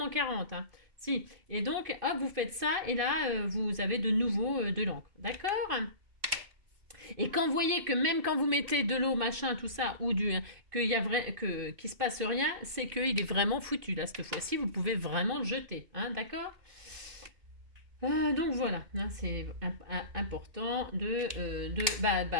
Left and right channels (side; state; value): left; late; 2.5 ms